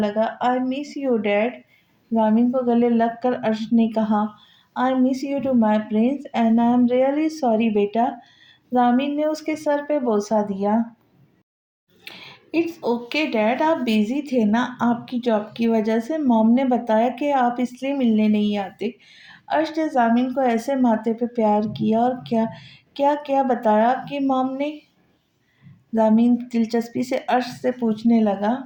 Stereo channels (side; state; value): both; identical; correlation 1.00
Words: I miss you dad. Jamin को गले लग कर अर्श ने कहा, I miss you too my prince and I am really sorry बेटा। जामिन ने उसके सर पे बोसा दिया। इट्स ओके डैड, आप बिजी थे ना, आपकी जॉब की वजह से। मॉम ने बताया कि आप इसलिए मिलने नहीं आते। अर्श ने जामिन को ऐसे माथे पे प्यार किया। और क्या क्या क्या बताया आपकी मॉम ने? जामिन दिलचस्पी से अर्श से पूछने लगा।